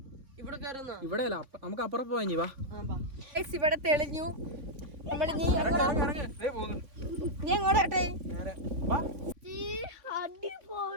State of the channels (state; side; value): late; left; 3.5 ms